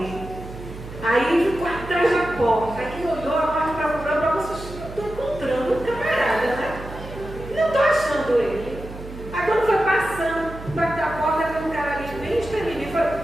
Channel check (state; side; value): noise; right; hum, 13 dB below the sound